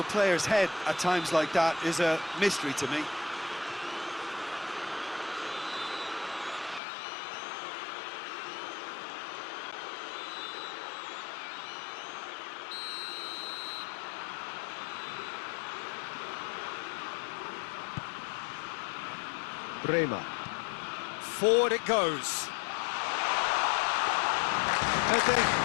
player's head at times like that is a mystery to me. Terima. Forward it goes. Pepe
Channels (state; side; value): drops out; right; at 6.8 s